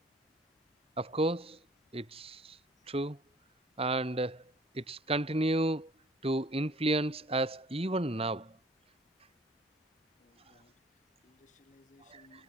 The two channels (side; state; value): both; normal; correlation 0.53